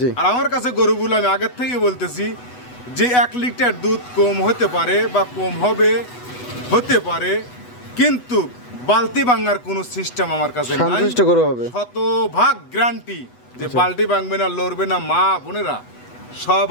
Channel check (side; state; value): right; late; 8.1 ms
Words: আর আমার কাছে গরুগুলো আমি আগের থেকে বলতেছি যে 1 লিটার দুধ কম হতে পারে বা কম হতে পারে, কিন্তু বালতি ভাঙার কোনো সিস্টেম আমার কাছে নাই। সন্তুষ্ট গরু হবে, শতভাগ গ্যারান্টি যে বালতি ভাঙবে না, লড়বে না। মা বোনেরা